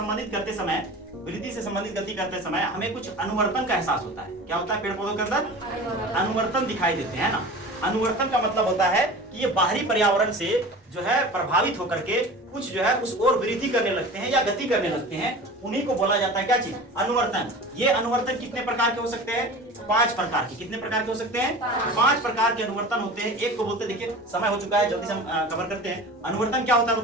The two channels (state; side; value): normal; both; correlation 0.37